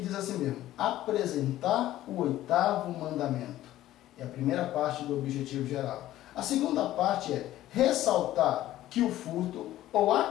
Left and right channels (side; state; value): right; quieter; 14.2 dB